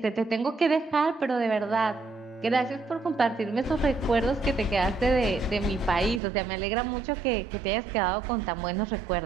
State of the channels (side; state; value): left; drops out; at 6.2 s